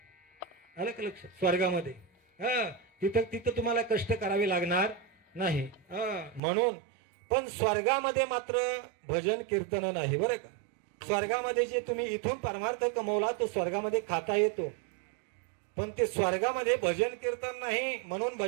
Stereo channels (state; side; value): drops out; left; at 6.4 s